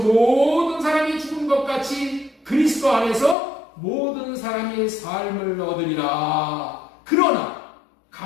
사람이 죽은 것 같이 그리스도 안에서 모든 사람이 삶을 얻으리라. 그러나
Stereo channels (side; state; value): right; drops out; at 3.4 s